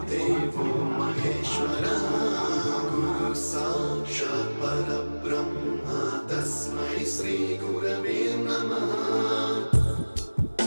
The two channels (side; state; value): both; inverted; correlation -1.00